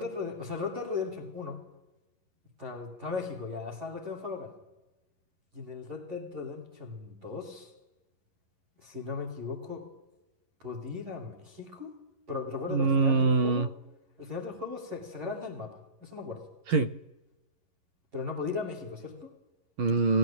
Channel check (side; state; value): left; late; 11 ms